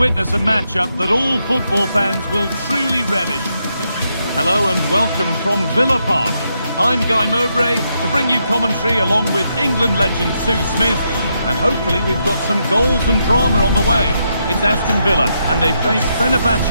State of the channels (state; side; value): inverted; both; correlation -0.80